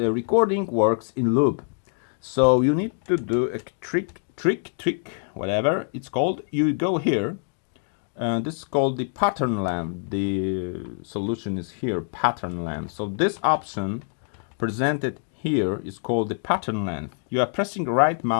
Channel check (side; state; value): right; silent; 62 dB below the other